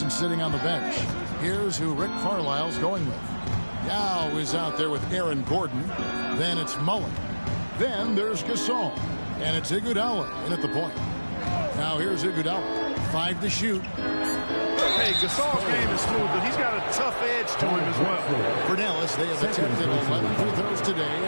sitting on the bench, here's who Rick Carlisle's going with. Yao is out there with Aaron Gordon. Then it's Mullen. Then there's Gasol. And it's Iguodala in at the point. Now here's Iguodala. 5 to shoot. Hey, Gasol's game is smooth, but he's got a tough edge to him as well. For Dallas, they have attempted 11 free throws today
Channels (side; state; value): both; inverted; correlation -1.00